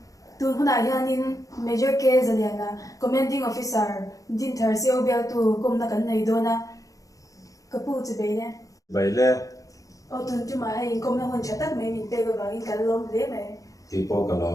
tun huna hianin major case aliana commanding officer din thar seo bel tu komna kan nei dona kapu chibai le bai le o tun chu ma hai komna hon chatak mai min pe ga in kan lom le mai ti po ka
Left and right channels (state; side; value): late; right; 0.17 ms